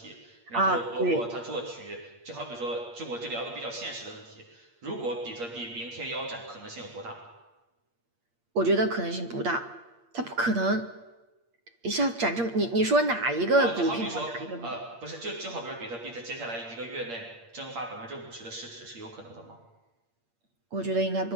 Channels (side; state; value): left; late; 8.6 ms